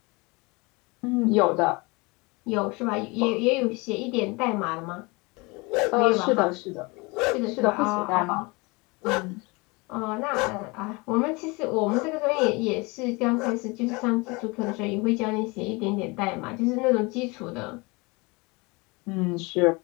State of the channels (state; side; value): quieter; right; 26.4 dB